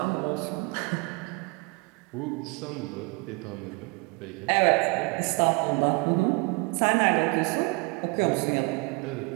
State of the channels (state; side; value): quieter; left; 28.9 dB